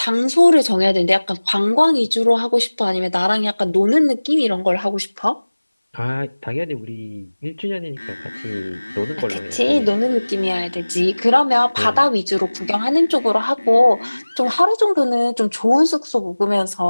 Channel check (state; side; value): inverted; both; correlation -1.00